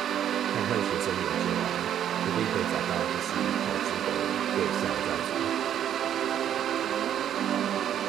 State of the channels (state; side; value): quieter; left; 10.1 dB